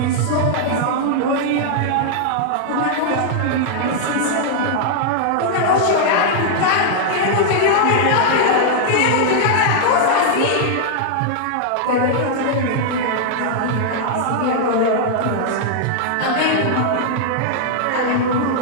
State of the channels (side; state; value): both; different; correlation -0.01